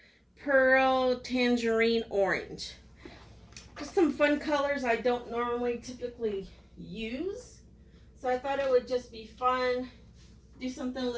Pearl Tangerine Orange. Just some fun colors I don't normally typically use, so I thought it would just be fun, do something a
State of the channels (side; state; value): both; identical; correlation 1.00